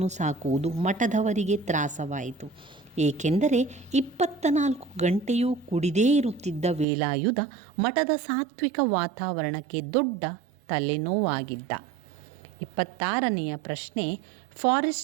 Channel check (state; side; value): drops out; left; at 6.9 s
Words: ಸಾಕುವುದು ಮಠದವರಿಗೆ ತ್ರಾಸವಾಯಿತು. ಏಕೆಂದರೆ 24 ಗಂಟೆಯೂ ಕುಡಿದೇ ಇರುತ್ತಿದ್ದ ವೇಲಾಯುಧ ಮಠದ ಸಾತ್ವಿಕ ವಾತಾವರಣಕ್ಕೆ ದೊಡ್ಡ ತಲೆನೋವಾಗಿದ್ದ. 26ನೆಯ ಪ್ರಶ್ನೆ.